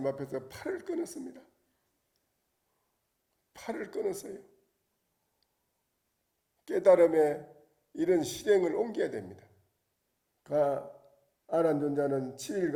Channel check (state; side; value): identical; both; correlation 1.00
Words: 앞에서 팔을 끊었습니다. 팔을 끊었어요. 깨달음에 이런 실행을 옮겨야 됩니다. 아란존자는